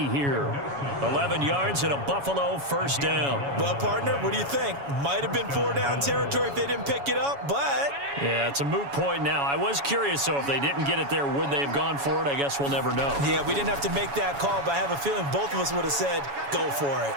here. 11 yards and a Buffalo first down. Well, partner, what do you think? Might have been 4-down territory if they didn't pick it up, but... Yeah, it's a moot point now. I was curious, so if they didn't get it there, would they have gone for it? I guess we'll never know. Yeah, we didn't have to make that call, but I have a feeling both of us would have said, go for it.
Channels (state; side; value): late; left; 7.1 ms